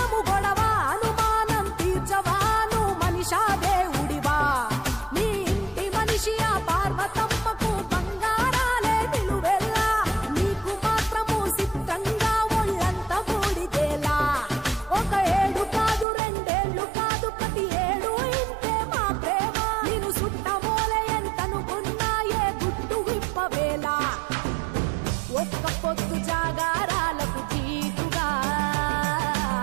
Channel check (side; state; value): left; drops out; at 16.1 s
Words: గొడవ అనుమానం తీర్చవా నువ్వు మనిషా దేవుడివా నీ ఇంటి మనిషి ఆ పార్వతమ్మకు బంగారాలే నిలువెల్లా నీకు మాత్రము సిద్ధంగా ఒళ్ళంత బూడిదేలా ఒక ఏడు కాదు రెండేళ్లు కాదు ప్రతి ఏడు ఇంతే మా ప్రేమ నేను సుట్టమోలే ఎంతనుకున్నా ఏ గుట్టు విప్పవేలా ఒక్క పొద్దు జాగారాలకు జీతుగా